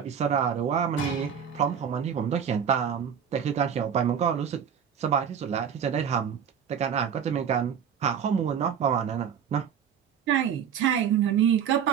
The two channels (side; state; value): left; quieter; 7.9 dB